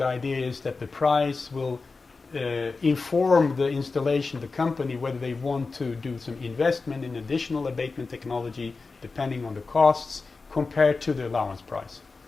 idea is that the price will inform the installation, the company, whether they want to do some investment in additional abatement technology, depending on the costs, compared to the allowance price.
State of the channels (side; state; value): right; quieter; 4.1 dB